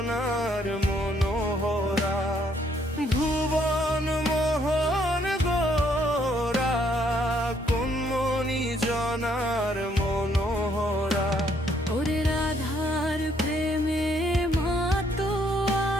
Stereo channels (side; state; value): both; normal; correlation 0.69